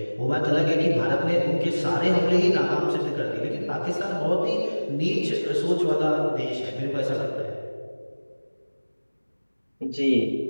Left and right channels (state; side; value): inverted; both; correlation -1.00